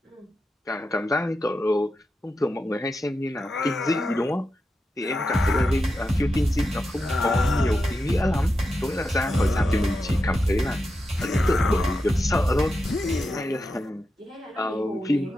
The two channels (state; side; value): normal; both; correlation 0.89